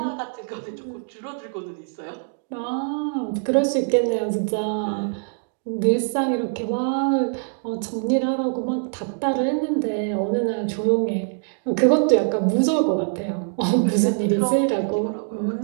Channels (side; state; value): left; silent; digital silence